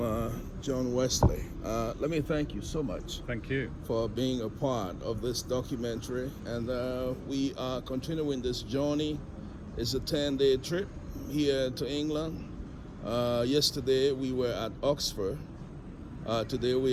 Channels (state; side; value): identical; both; correlation 1.00